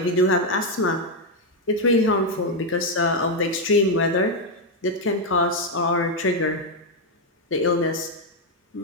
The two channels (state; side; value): normal; both; correlation 0.02